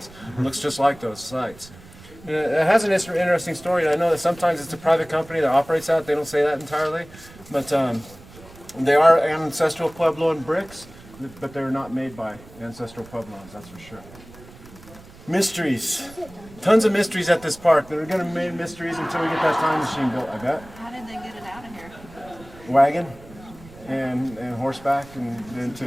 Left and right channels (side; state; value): right; noise; rumble, 20 dB below the sound